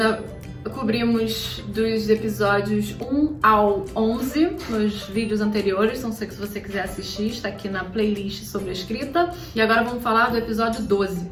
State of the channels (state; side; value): identical; both; correlation 1.00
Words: cobrimos dos episódios 1 ao 11 nos vídeos anteriores, então se você quiser assistir, está aqui na playlist sobre a escrita. E agora vamos falar do episódio 12,